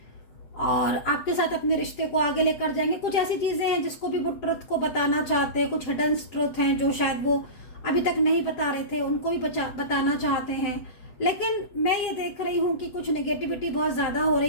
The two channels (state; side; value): late; right; 7.7 ms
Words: और आपके साथ अपने रिश्ते को आगे लेकर जाएंगे। कुछ ऐसी चीजें हैं जिसको भी वो ट्रुथ को बताना चाहते हैं, कुछ हिडन ट्रुथ हैं जो शायद वो अभी तक नहीं बता रहे थे, उनको भी बताना चाहते हैं। लेकिन मैं ये देख रही हूँ कि कुछ नेगेटिविटी बहुत ज्यादा हो